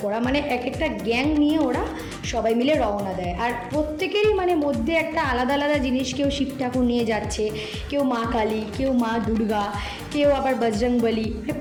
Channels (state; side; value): identical; both; correlation 1.00